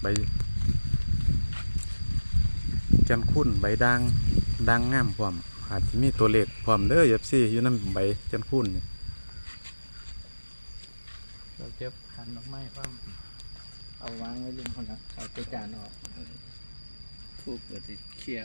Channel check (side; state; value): both; inverted; correlation -1.00